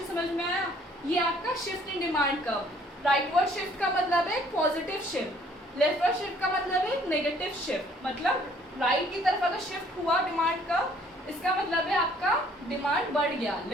समझ में आया? ये आपका shift in demand curve. Rightward shift का मतलब है पॉजिटिव शिफ्ट, लेफ्टवर्ड शिफ्ट का मतलब है नेगेटिव शिफ्ट। मतलब राइट की तरफ अगर शिफ्ट हुआ डिमांड का, इसका मतलब है आपका डिमांड बढ़ गया,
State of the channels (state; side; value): normal; both; correlation 0.60